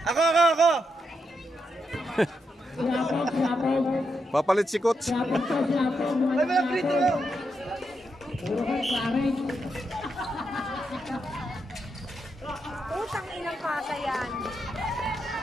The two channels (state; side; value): normal; both; correlation 0.83